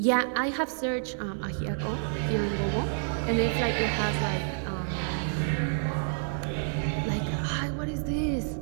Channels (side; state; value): left; silent; digital silence